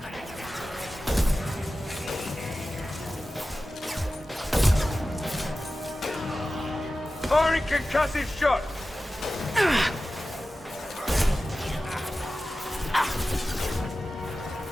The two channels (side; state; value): both; normal; correlation 0.95